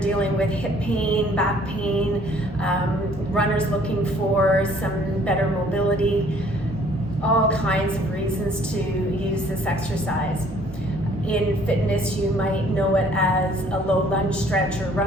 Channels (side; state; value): both; normal; correlation 0.59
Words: with hip pain, back pain, runners looking for some better mobility, all kinds of reasons to use this exercise. In fitness, you might know it as a low lunge stretch or